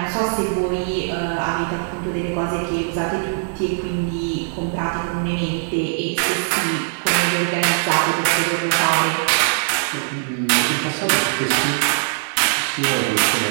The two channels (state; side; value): silent; left; digital silence